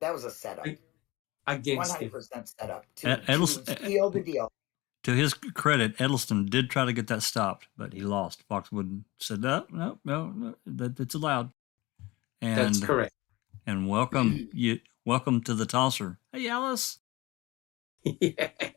was a setup. Against 100% setup to seal the deal. To his credit, Edelston did try to get that stopped, but he lost. Foxwood said, no, it's allowed. And, that's correct. And welcome to the tosser. Hey, Alice.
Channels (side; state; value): right; quieter; 21.0 dB